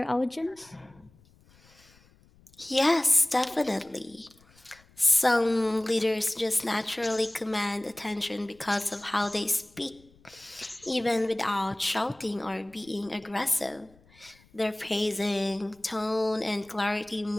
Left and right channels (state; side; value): noise; left; rumble, 29 dB below the sound